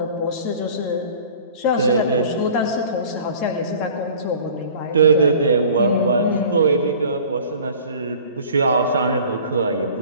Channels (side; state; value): both; inverted; correlation -0.46